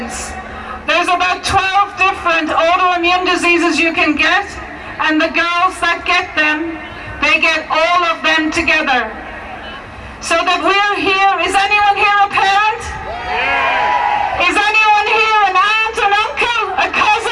there's about 12 different autoimmune diseases you can get, and the girls that get them, they get all of them together. So that we're here, is anyone here a parent? Is anyone here an aunt, an uncle, a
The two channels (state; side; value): identical; both; correlation 1.00